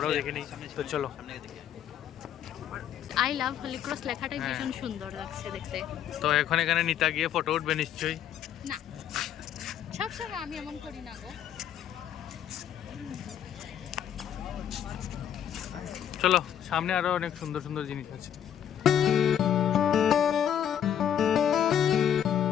দেখে নিই তো চলো আই লাভ হলি ক্রস লেখাটাই হ্যাঁ। ভীষণ সুন্দর লাগছে দেখতে। তো এখন এখানে নিতা গিয়ে ফটো উঠবে নিশ্চয়ই না সবসময় আমি এমন করি না গো। চলো সামনে আরো অনেক সুন্দর সুন্দর জিনিস আছে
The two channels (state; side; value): quieter; right; 9.7 dB